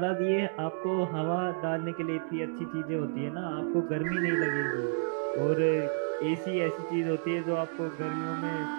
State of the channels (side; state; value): left; silent; digital silence